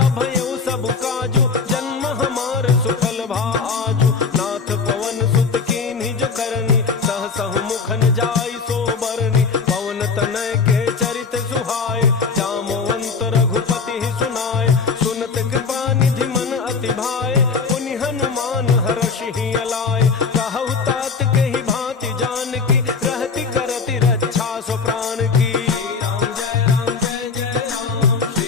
भयउ सब काजु, जन्म हमार सुफल भा आजु। नाथ पवन सुत कीन्हि जो करनी, सहसहु मुख न जाई सो बरनी। पवन तनय के चरित सुहाए, जामवंत रघुपति ही सुनाए। सुनत कृपा निधि मन अति भाए, पुनि हनुमान हर्षि ही अलाए। कहु तात कहि भांति जानकी, रहति करति रक्षा सो प्राण की। श्री राम जय राम जय जय राम,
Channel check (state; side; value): quieter; right; 5.1 dB